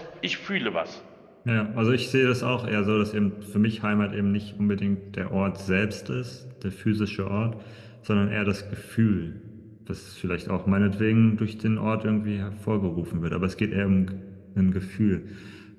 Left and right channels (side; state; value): both; identical; correlation 1.00